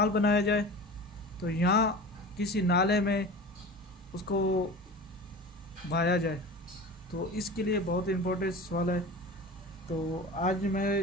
बनाया जाए, तो यहाँ किसी नाले में उसको बहाया जाए। तो इसके लिए बहुत इम्पोर्टेंट सवाल है। तो आज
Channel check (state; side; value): normal; both; correlation 0.35